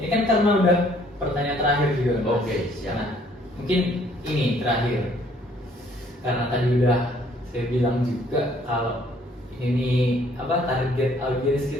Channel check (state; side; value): normal; both; correlation 0.62